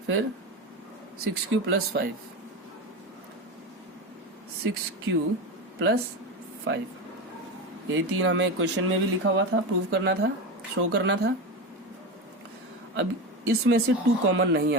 फिर 6q प्लस 5, 6q प्लस 5। यही 3 हमें क्वेश्चन में भी लिखा हुआ था, प्रूव करना था, शो करना था। अब इसमें से 2 कॉमन नहीं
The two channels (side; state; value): both; normal; correlation 0.20